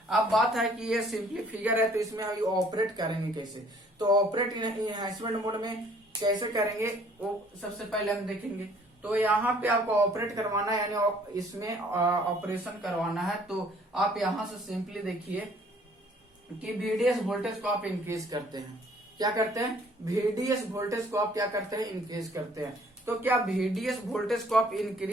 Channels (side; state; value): both; normal; correlation 0.58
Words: अब बात है कि ये सिंपली फिगर है तो इसमें हम ऑपरेट करेंगे कैसे, तो ऑपरेट इनहेंसमेंट मोड में कैसे करेंगे वो सबसे पहले हम देखेंगे। तो यहाँ पे आपको ऑपरेट करवाना है, यानी इसमें ऑपरेशन करवाना है, तो आप यहाँ से सिंपली देखिए कि VDS वोल्टेज को आप इंक्रीज करते हैं। क्या करते हैं, VDS वोल्टेज को आप क्या करते हैं, इंक्रीज करते हैं। तो क्या VDS वोल्टेज को आप